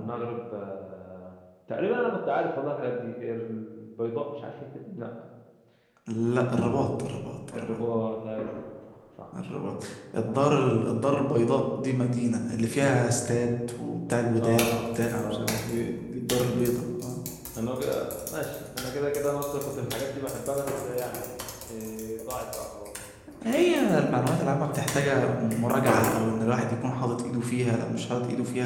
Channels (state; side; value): identical; both; correlation 1.00